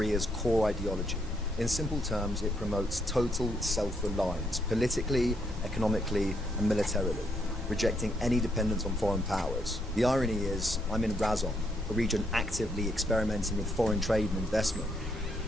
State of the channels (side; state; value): both; normal; correlation 0.75